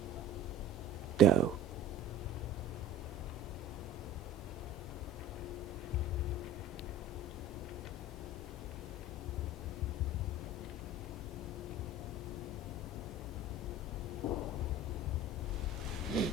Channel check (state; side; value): normal; both; correlation 0.40